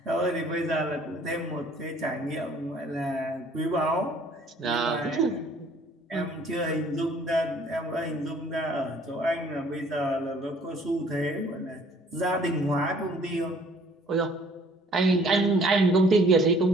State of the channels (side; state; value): both; normal; correlation 0.57